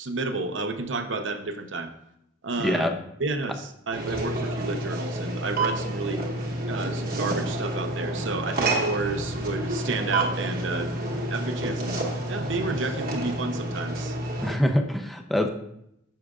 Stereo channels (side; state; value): both; normal; correlation 0.41